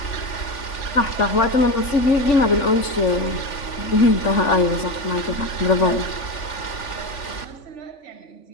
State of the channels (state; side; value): late; right; 3.5 ms